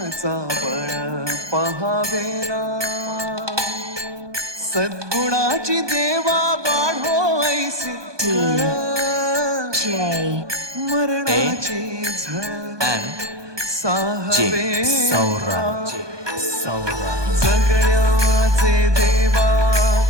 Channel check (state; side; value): late; left; 1.2 ms